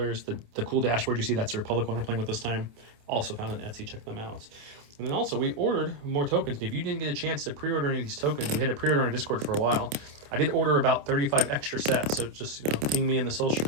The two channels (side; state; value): left; late; 28 ms